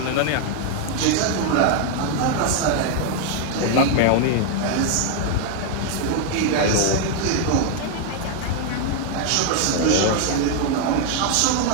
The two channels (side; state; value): both; different; correlation 0.00